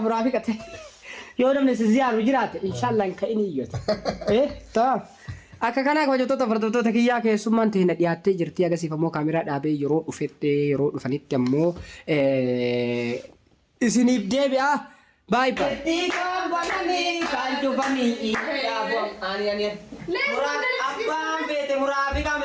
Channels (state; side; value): identical; both; correlation 1.00